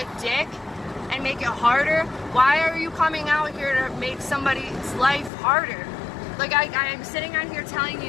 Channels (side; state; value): right; drops out; at 5.3 s